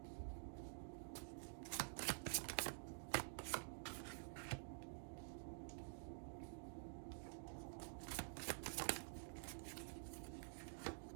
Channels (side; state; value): left; silent; digital silence